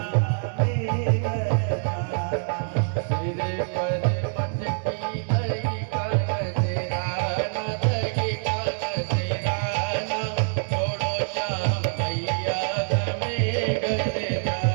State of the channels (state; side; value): silent; left; digital silence